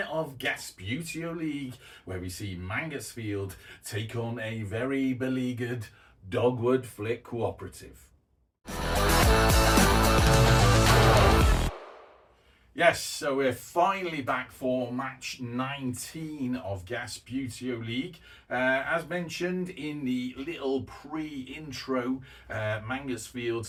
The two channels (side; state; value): both; identical; correlation 1.00